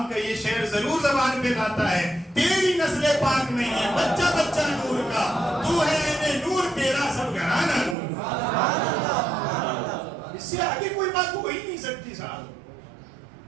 کا یہ شعر ضرور زبان پہ لاتا ہے. تیری نسل پاک نہیں ہے بچہ بچہ نور کا، تو ہے اے نور تیرا سب گھرانہ نور. اس سے آگے کوئی بات ہو ہی نہیں سکتی صاحب.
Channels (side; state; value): left; drops out; at 8.0 s